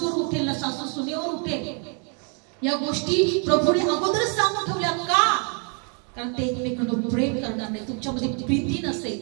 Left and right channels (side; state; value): left; quieter; 38.1 dB